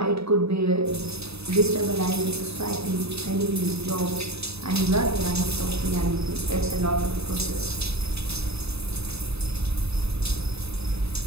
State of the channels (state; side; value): late; left; 0.79 ms